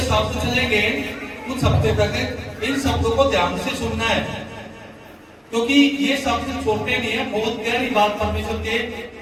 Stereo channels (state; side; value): identical; both; correlation 1.00